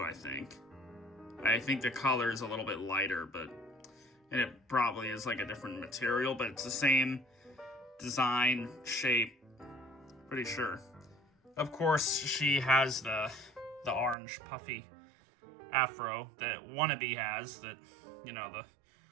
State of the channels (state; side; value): drops out; left; at 14.2 s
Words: I think. I think the color is a little bit lighter, and it probably is a different material, but it's the same design, shape, pretty sure. Of course, she has the orange puffy afro that Wannabe has, that, you know, the